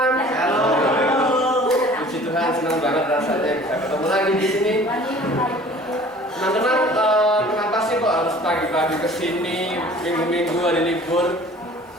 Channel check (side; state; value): both; normal; correlation 0.48